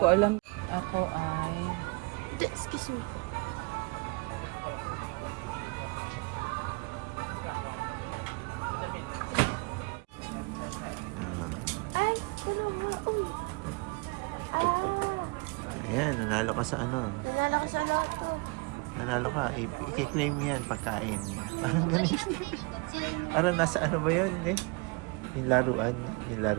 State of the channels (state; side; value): quieter; left; 28.9 dB